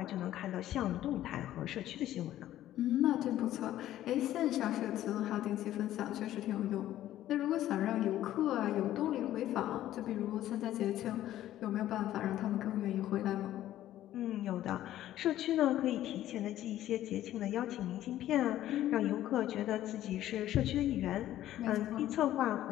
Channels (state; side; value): quieter; right; 13.2 dB